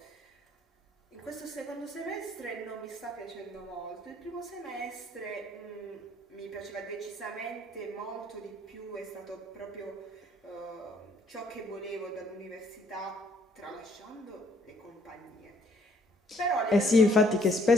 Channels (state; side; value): normal; both; correlation 0.64